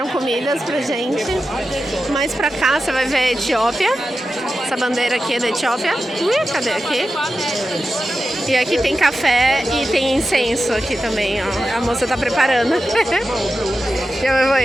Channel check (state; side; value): normal; both; correlation 0.92